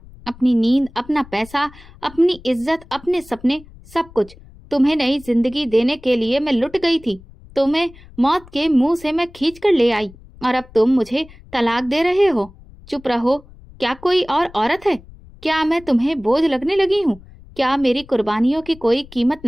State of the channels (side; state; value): left; noise; rumble, 22 dB below the sound